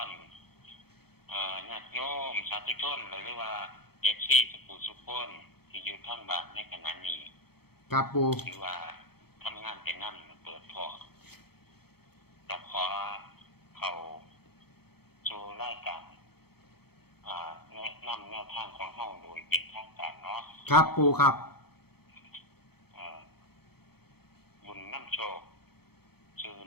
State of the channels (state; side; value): late; right; 0.96 ms